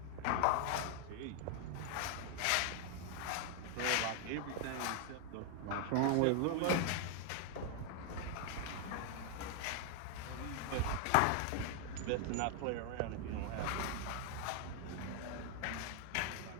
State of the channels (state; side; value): different; both; correlation 0.00